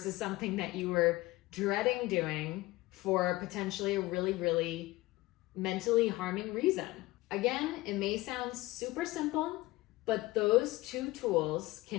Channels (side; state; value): right; quieter; 19.5 dB